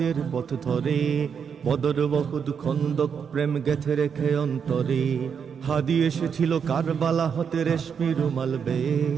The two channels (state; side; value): quieter; left; 6.9 dB